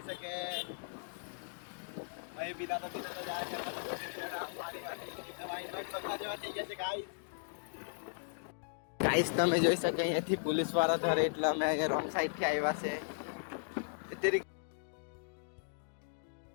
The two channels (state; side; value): silent; right; digital silence